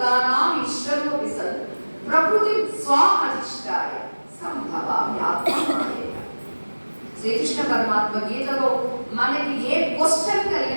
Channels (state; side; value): inverted; both; correlation -1.00